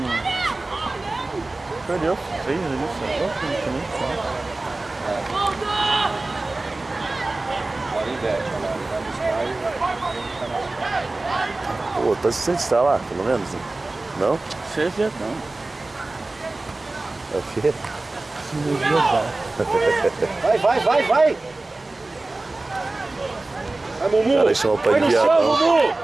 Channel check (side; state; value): left; quieter; 3.1 dB